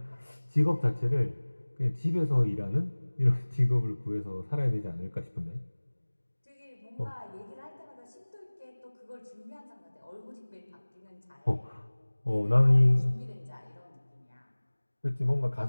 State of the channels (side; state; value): both; inverted; correlation -1.00